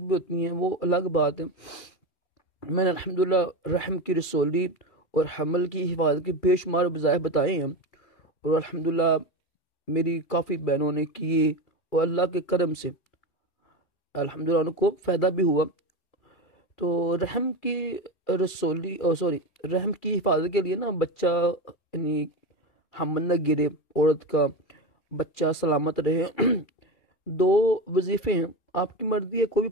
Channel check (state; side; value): late; right; 2.4 ms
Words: होती हैं, वो अलग बात है। मैंने अल्हम्दुलिल्लाह रहम की रसोली और हमल की हिफाजत के बेशुमार वज़ाइफ बताए हैं, और अल्हम्दुलिल्लाह मेरी काफ़ी बहनों ने किए, और अल्लाह के करम से अल्हम्दुलिल्लाह उनको फ़ायदा भी हुआ। तो रहम की रसोली रहम की हिफाजत के लिए ना, बच्चा यानी हमल न गिरे, औरत का बच्चा सलामत रहे। दो वजीफ़े हैं, आपकी मर्जी है, कोई भी